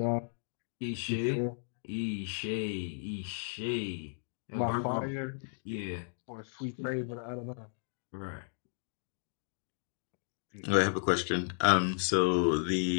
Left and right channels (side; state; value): right; silent; digital silence